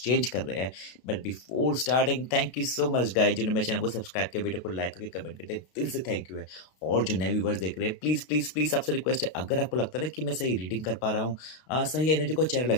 कर रहे हैं। But before starting thank you so much guys, जिन्होंने मेरे चैनल को सब्सक्राइब किया, वीडियो को लाइक करके कमेंट करते हैं, दिल से थैंक यू है। और जो नए व्यूवर्स देख रहे हैं, प्लीज़ प्लीज़ प्लीज़ आपसे रिक्वेस्ट है, अगर आपको लगता है ना कि मैं सही रीडिंग कर पा रहा हूँ, सही एनर्जी को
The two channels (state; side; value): late; right; 32 ms